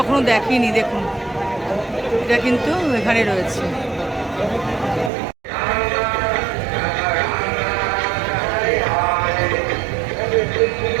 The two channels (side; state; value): left; drops out; at 5.1 s